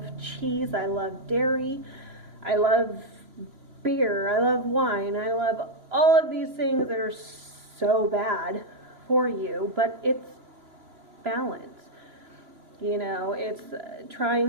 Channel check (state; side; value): late; left; 2.9 ms